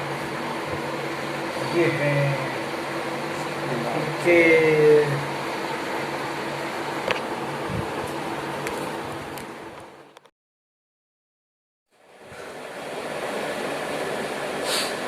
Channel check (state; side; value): identical; both; correlation 1.00